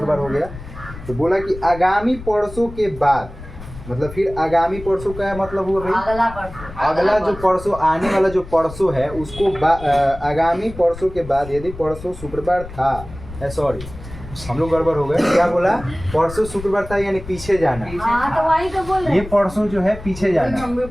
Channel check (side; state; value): left; noise; rumble, 14 dB below the sound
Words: हो गया। तो बोला कि आगामी परसों के बाद, मतलब फिर आगामी परसों का मतलब हुआ भाई अगला जो परसों, आने वाला जो परसों है उसको आगामी परसों के बाद, यदि परसों शुक्रवार था, सॉरी हम लोग गड़बड़ हो गए। क्या बोला? परसों शुक्रवार था यानी पीछे जाना। हाँ तो वही तो बोल रहे ये परसों जो है पीछे जाना।